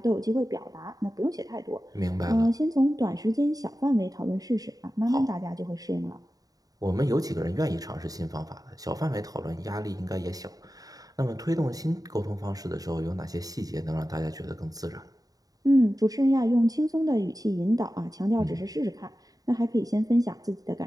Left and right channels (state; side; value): late; left; 0.18 ms